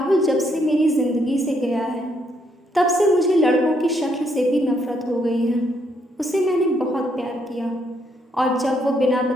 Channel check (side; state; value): both; normal; correlation 0.73